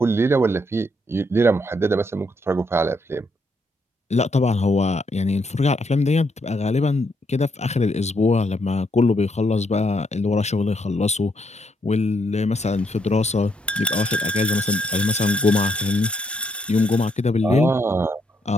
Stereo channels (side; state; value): both; normal; correlation 0.75